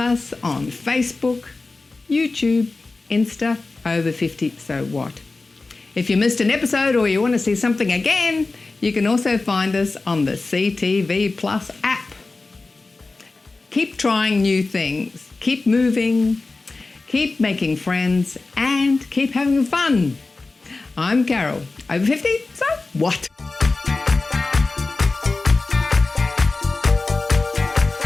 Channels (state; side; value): quieter; right; 3.6 dB